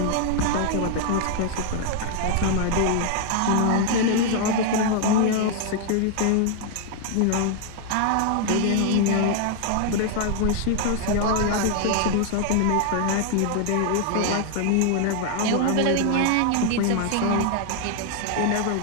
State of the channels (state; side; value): different; both; correlation 0.00